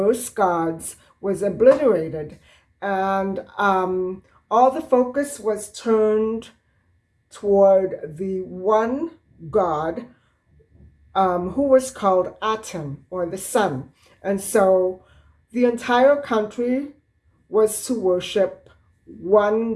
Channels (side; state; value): both; identical; correlation 1.00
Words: gods was obliterated, and all the focus was turned toward the one god who was called Aten, or the sun. And so the entire country was to worship